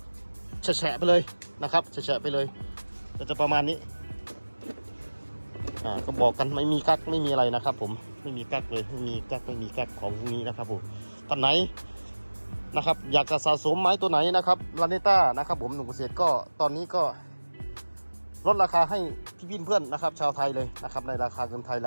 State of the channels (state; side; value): inverted; both; correlation -1.00